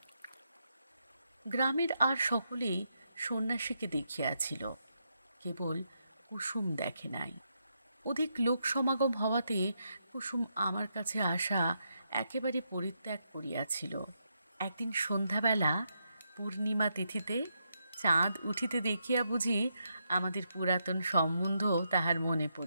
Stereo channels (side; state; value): both; inverted; correlation -0.81